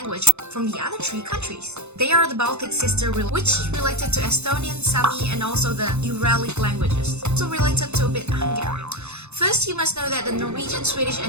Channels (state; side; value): late; left; 0.81 ms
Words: from the other three countries. They are the Baltic sister, which is related to Estonian, Sami, and also the Uralic languages, also related to a bit Hungarian. First, you must know that the Norwegian, Swedish,